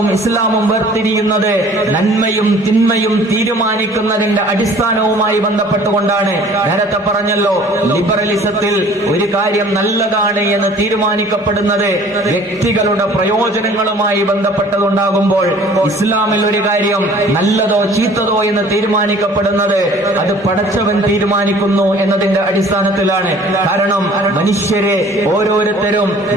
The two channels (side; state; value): both; normal; correlation 0.51